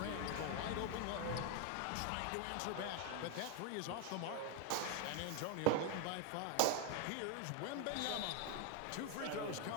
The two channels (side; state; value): both; different; correlation 0.01